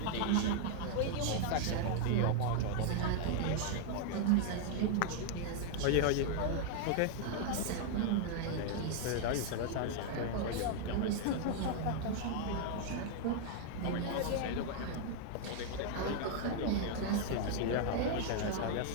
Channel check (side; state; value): both; different; correlation 0.00